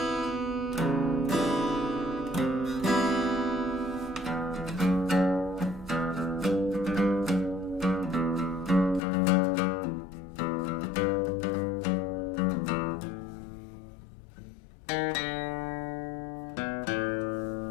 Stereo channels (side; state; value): right; drops out; at 9.0 s